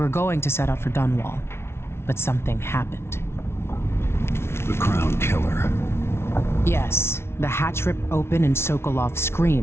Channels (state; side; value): late; right; 0.12 ms